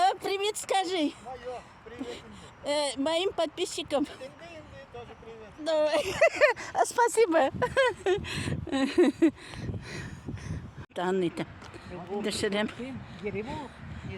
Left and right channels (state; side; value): identical; both; correlation 1.00